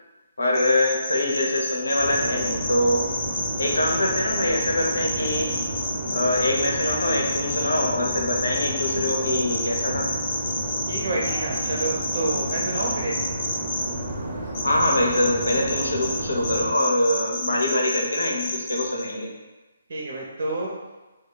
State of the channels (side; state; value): both; inverted; correlation -0.78